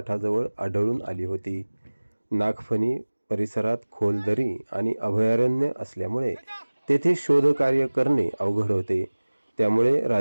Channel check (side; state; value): both; inverted; correlation -1.00